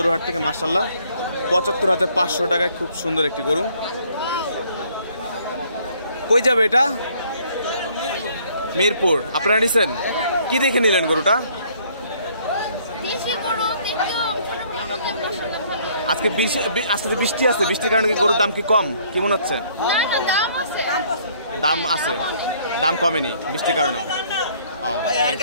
হাট থেকে। মাশাআল্লাহ, 75,500 টাকায় খুব সুন্দর একটি গরু। কই যাবে এটা? মিরপুর। আপনারা নিছেন? কি দেখে নিলেন গরুটা? আজকে বৃষ্টি আছে, বৃষ্টির কারণে কি গরুর দাম কি কম? কি মনে হচ্ছে? দাম আছে, দাম কমেনি বৃষ্টির কারণে।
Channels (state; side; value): inverted; both; correlation -0.62